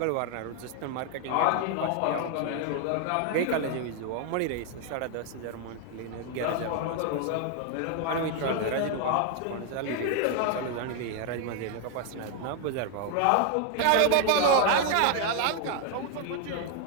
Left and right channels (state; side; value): different; both; correlation 0.00